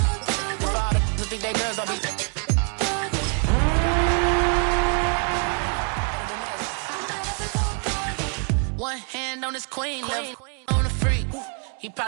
One hand on his queen, left on the freak. He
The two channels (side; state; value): left; quieter; 39.9 dB